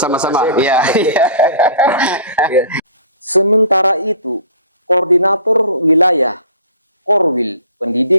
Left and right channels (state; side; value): inverted; both; correlation -0.44